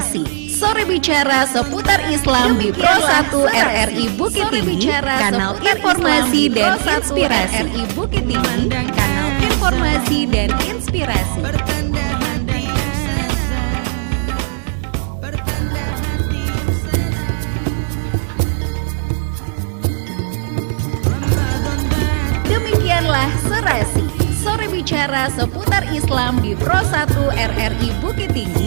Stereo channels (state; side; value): silent; left; 68 dB below the other